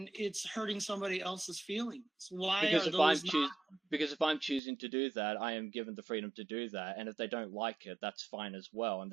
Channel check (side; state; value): left; drops out; at 4.6 s